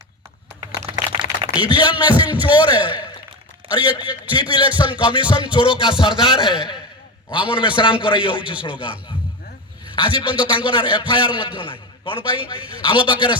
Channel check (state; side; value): normal; both; correlation 0.20